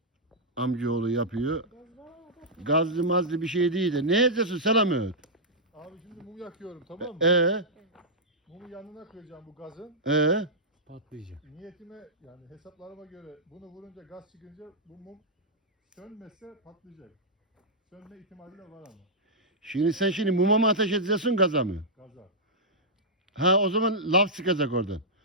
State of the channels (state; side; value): normal; both; correlation -0.10